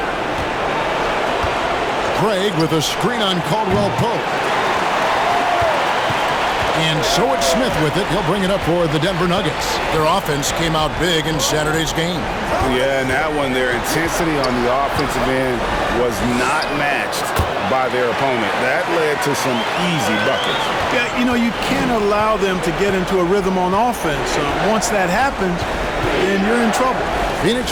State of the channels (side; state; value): both; identical; correlation 1.00